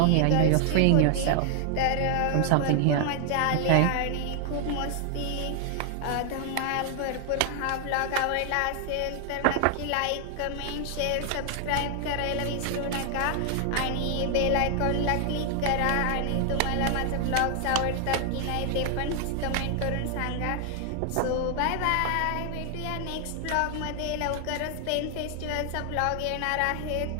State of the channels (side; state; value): both; different; correlation 0.00